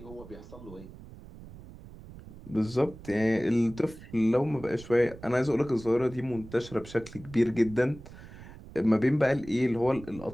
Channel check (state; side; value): noise; right; rumble, 17 dB below the sound